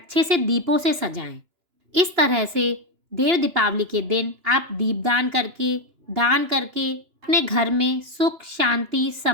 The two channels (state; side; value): late; left; 2.8 ms